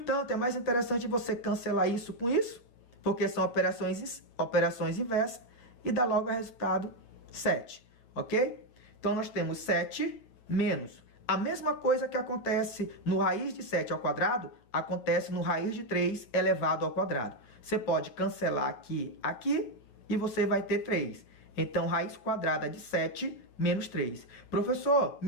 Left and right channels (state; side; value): late; right; 8.7 ms